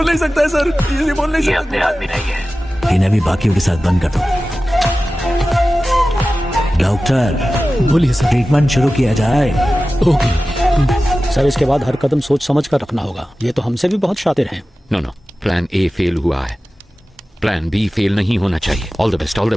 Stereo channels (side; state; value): both; normal; correlation 0.95